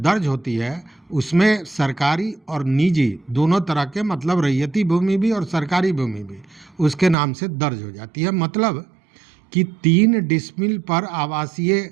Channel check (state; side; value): drops out; left; at 7.2 s